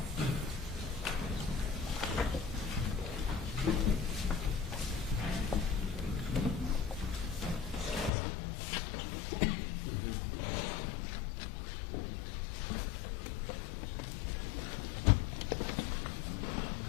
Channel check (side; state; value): right; drops out; at 8.1 s